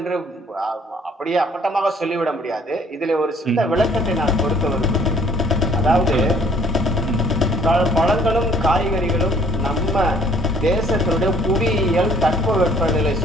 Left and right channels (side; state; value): both; normal; correlation 0.58